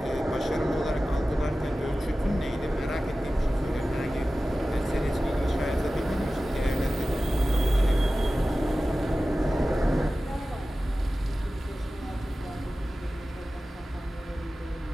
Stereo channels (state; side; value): normal; both; correlation 0.96